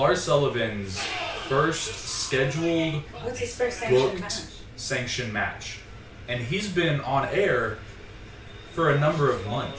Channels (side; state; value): both; identical; correlation 1.00